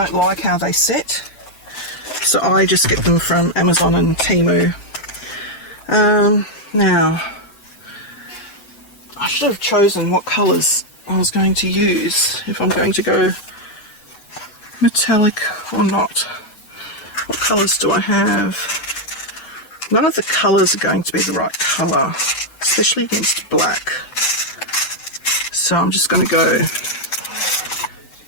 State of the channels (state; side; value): late; right; 7.9 ms